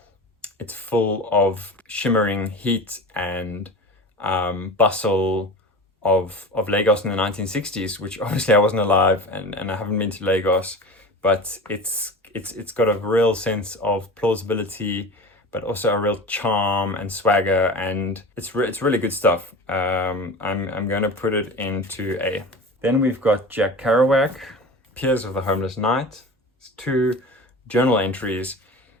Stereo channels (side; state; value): both; normal; correlation 0.33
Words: it's full of shimmering heat and bustle of Lagos in the 1960s, which obviously I wasn't alive and I haven't been to Lagos, but it's got a real sense of plausibility, but also a real charm and swagger, and it's really good stuff. I'm going to put it into A. Then we've got Jack Kerouac, Piers of the Homeless Knight. It's 2 journal entries.